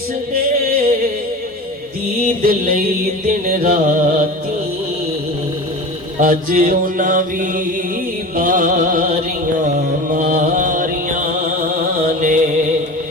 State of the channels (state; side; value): normal; both; correlation 0.32